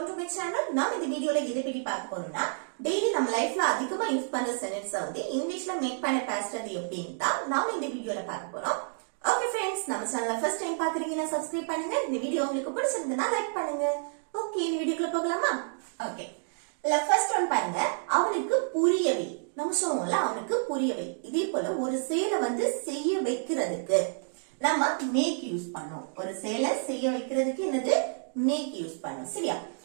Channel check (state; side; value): silent; left; digital silence